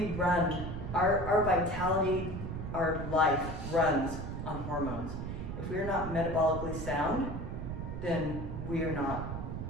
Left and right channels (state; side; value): noise; right; rumble, 5 dB below the sound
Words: run, our vitality, our life runs on hormones. If we're not metabolically sound, then we're not